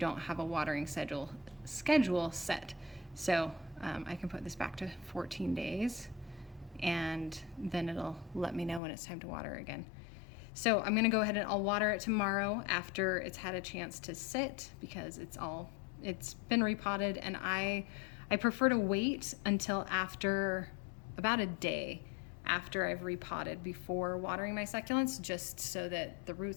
have a watering schedule set. So I can put this back to 14 days. And then it'll let me know when it's time to water again. So I'm gonna go ahead and I'll water it tomorrow after it's had a chance to sit because it's been repotted, and I prefer to wait until after about a day after I've repotted before watering my succulents, just so that the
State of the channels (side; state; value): right; drops out; at 8.8 s